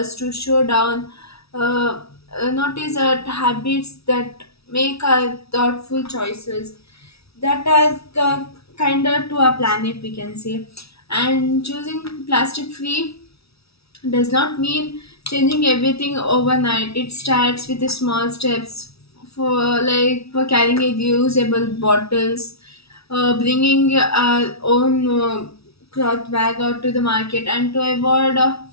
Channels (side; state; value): right; late; 0.77 ms